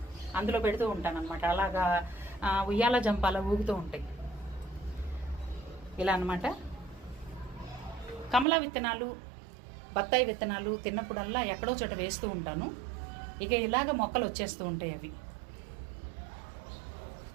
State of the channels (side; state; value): left; drops out; at 8.5 s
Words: అందులో పెడుతూ ఉంటాను అనమాట. అలాగా ఉయ్యాల జంపాల ఊగుతూ ఉంటాయి ఇలా అనమాట. కమలా విత్తనాలు, బత్తాయి విత్తనాలు తిన్నప్పుడల్లా ఎక్కడో చోట వేస్తూ ఉంటాను. ఇక ఇలాగ మొక్కలు వచ్చేస్తూ ఉంటాయి. అవి